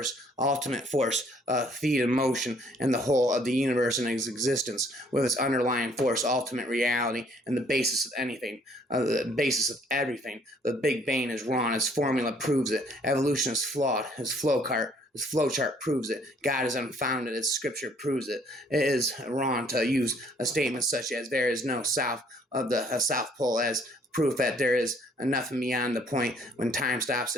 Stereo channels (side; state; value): both; normal; correlation 0.62